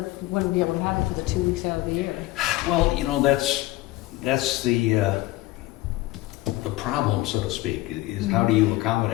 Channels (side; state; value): right; quieter; 17.9 dB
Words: wouldn't be able to have it for the 2 weeks out of the year? Well, that's the problem, so to speak, is how do you